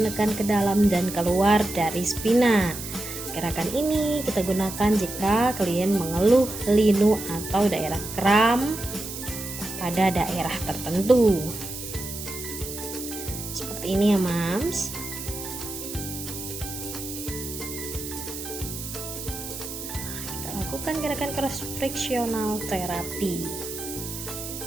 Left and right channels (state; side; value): noise; right; hiss, 9 dB below the sound